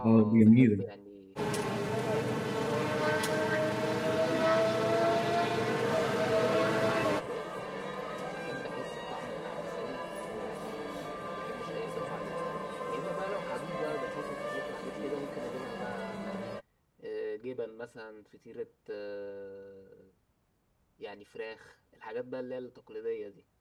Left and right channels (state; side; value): identical; both; correlation 1.00